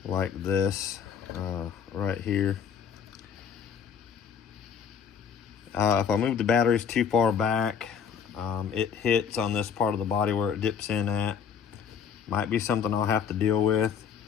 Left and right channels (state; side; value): quieter; right; 7.2 dB